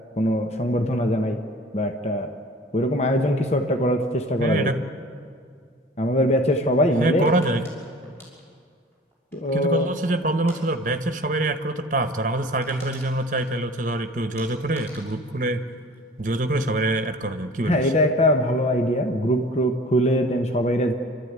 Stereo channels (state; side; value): normal; both; correlation 0.45